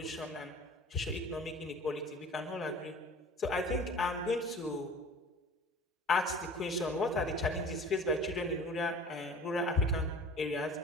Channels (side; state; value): both; normal; correlation 0.43